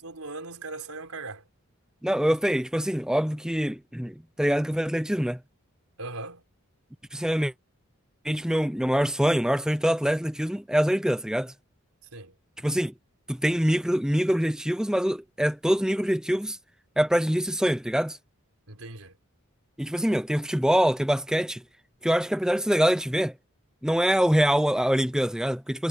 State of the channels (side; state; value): both; normal; correlation 0.96